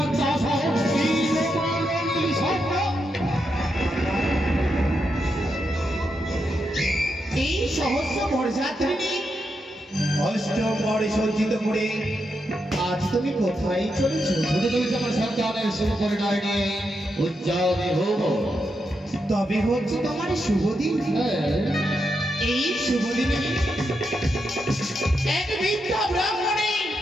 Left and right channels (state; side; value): normal; both; correlation 0.84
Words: আশা কি তোমার স্বপ্ন এই সহস্র বরযাত্রী অষ্টমরে সজ্জিত করে আজ তুমি কোথায় চলেছো? আমার সন্তানের শুভ পরিণয় নিয়ে উজ্জ্বলে হব। তবে হচ্ছে তোমার শুভ দিন। এই শুভ দিনে এক বিদ্যা ব্রাহ্মণী